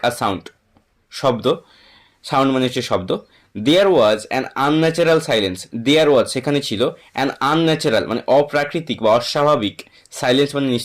a sound শব্দ, সাউন্ড মানে হচ্ছে শব্দ। There was an unnatural silence, there was সেখানে ছিল, অ্যান আনন্যাচারাল মানে অপ্রাকৃতিক বা অস্বাভাবিক, সাইলেন্স মানে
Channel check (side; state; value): both; identical; correlation 1.00